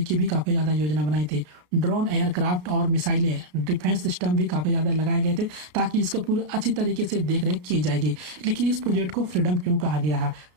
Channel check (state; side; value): late; left; 33 ms